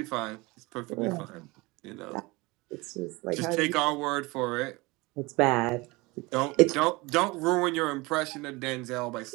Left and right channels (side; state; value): left; quieter; 23.6 dB